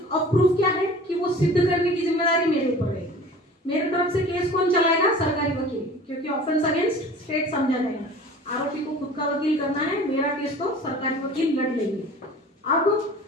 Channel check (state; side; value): normal; both; correlation 0.43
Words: ऑफ प्रूफ क्या है कि वो सिद्ध करने की जिम्मेदारी मेरे ऊपर रहेगी। मेरे तरफ से केस कौन चलाएगा? सरकारी वकील, क्योंकि ऑफेंस अगेंस्ट स्टेट समझा जाएगा। आरोपी को खुद का वकील करना है, मेरा केस तो सरकारी वकील लड़ लेंगे। अब